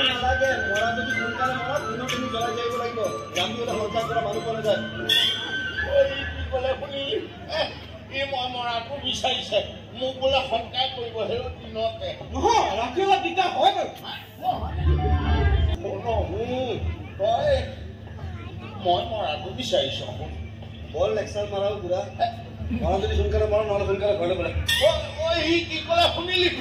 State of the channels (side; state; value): both; identical; correlation 1.00